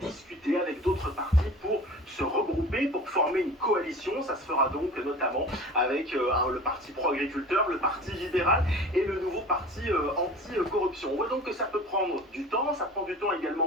discuter avec d'autres partis pour se regrouper, pour former une coalition. Ça se fera donc notamment avec le parti pro-agriculteur, le parti libéral et le nouveau parti anti-corruption. On voit donc que ça peut prendre du temps, ça prend du temps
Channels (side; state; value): both; normal; correlation 0.40